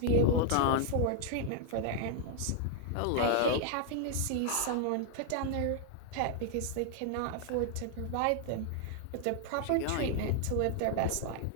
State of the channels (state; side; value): different; both; correlation 0.00